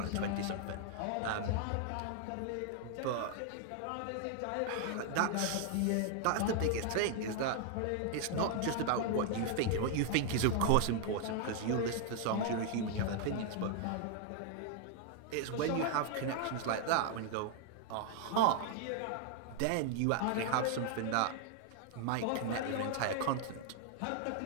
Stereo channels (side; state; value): both; different; correlation 0.00